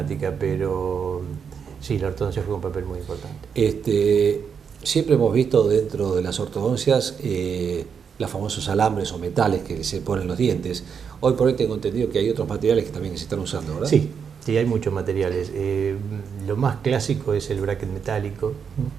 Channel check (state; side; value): quieter; left; 6.8 dB